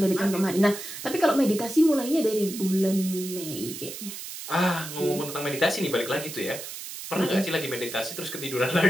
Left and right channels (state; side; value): noise; right; hiss, 9 dB below the sound